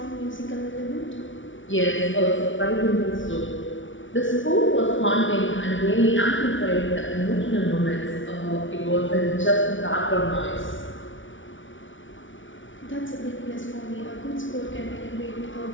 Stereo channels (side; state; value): right; late; 0.56 ms